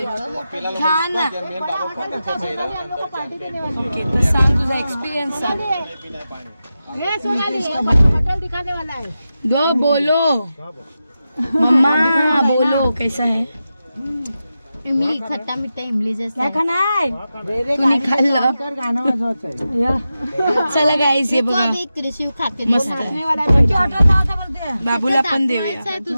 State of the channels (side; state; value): both; inverted; correlation -0.91